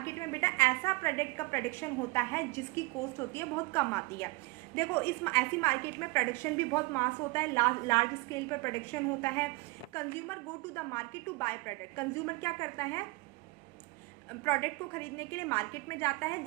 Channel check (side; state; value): left; quieter; 23.6 dB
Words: में बेटा ऐसा प्रोडक्ट का प्रोडक्शन होता है जिसकी कॉस्ट होती है बहुत कम आती है। देखो, इस ऐसी मार्केट में प्रोडक्शन भी बहुत मास होता है, लार्ज स्केल पर प्रोडक्शन होता है। Consumer go to the market to buy product. Consumer क्या करता है, प्रोडक्ट को खरीदने के लिए मार्केट में जाता है,